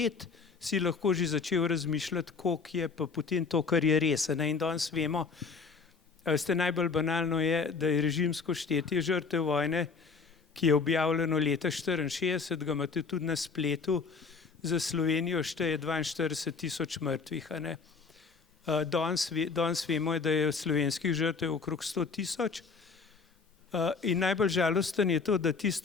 si lahko že začel razmišljati, koliko je pa potem to, kar je res. In danes vemo, najbolj banalno je, da je režimsko štetje žrtev vojne, ki je objavljeno leta 1964, ga imate tudi na spletu, za Slovenijo šteje 42 000 mrtvih. Danes vemo, da je slovenskih žrtev okrog 100 000. In najbolj žalosten je to, da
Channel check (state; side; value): quieter; right; 4.9 dB